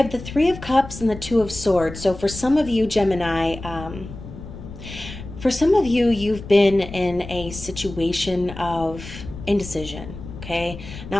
the 3 of Cups and the 2 of Swords. So for some of you, Gemini, you've been in a situation of indecision, okay?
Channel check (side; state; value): left; noise; rumble, 13 dB below the sound